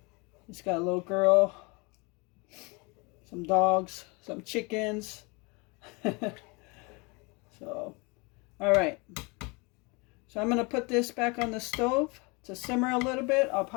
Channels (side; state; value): right; quieter; 28.6 dB